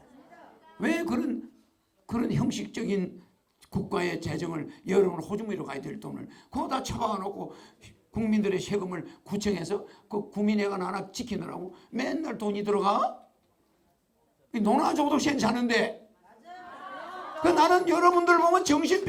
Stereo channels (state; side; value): identical; both; correlation 1.00